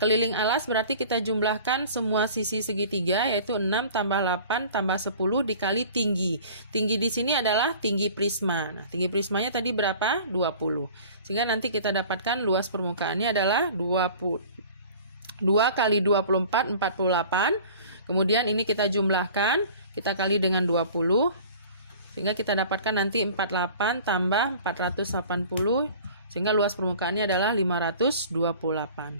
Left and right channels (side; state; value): both; inverted; correlation -0.45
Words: alas berarti kita jumlahkan semua sisi segitiga, yaitu 6 tambah 8 tambah 10 dikali tinggi. Tinggi di sini adalah tinggi prisma. Nah, tinggi prismanya tadi berapa? 20. Sehingga nanti kita dapatkan luas permukaannya adalah 2 kali 24, 48. Kemudian ini kita jumlahkan, kita kali dengan 20, sehingga kita dapatkan nanti 48 tambah 480, sehingga luas permukaannya adalah